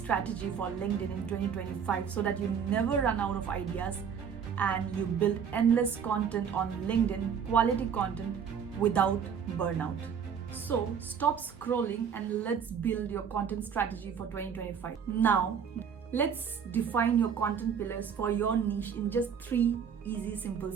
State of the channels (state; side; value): quieter; left; 7.3 dB